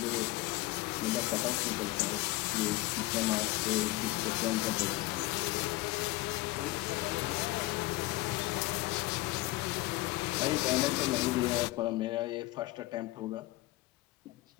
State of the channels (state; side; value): quieter; right; 19.5 dB